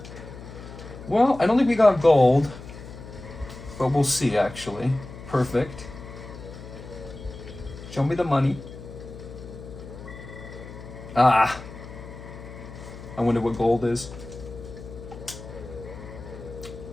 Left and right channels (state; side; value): noise; left; hum, 14 dB below the sound